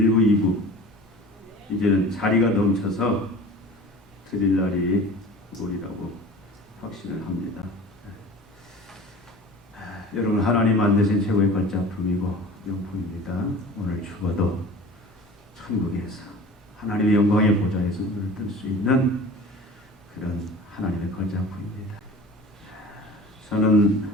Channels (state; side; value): normal; both; correlation 0.39